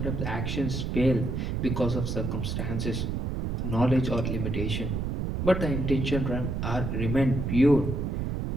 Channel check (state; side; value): noise; right; rumble, 1 dB below the sound